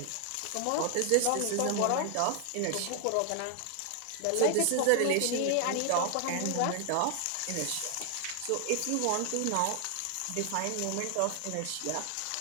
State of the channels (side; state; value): both; different; correlation 0.00